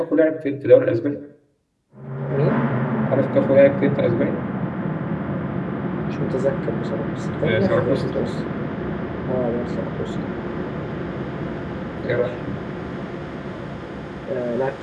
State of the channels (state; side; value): identical; both; correlation 1.00